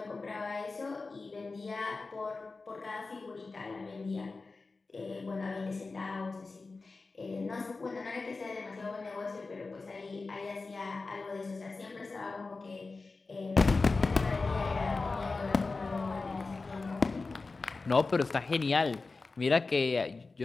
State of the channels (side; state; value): right; quieter; 3.8 dB